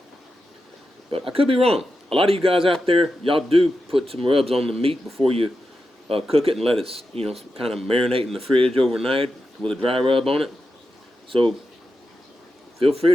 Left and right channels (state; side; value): normal; both; correlation 0.89